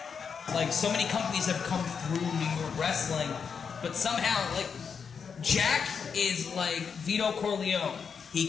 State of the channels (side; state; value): right; quieter; 6.3 dB